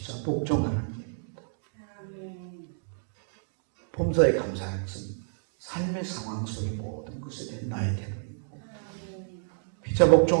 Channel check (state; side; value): silent; left; digital silence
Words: 복종하는 일입니다. 범사에 감사하는 것은 삶의 상황 속의 모든 것에 대한 나의 태도입니다. 피차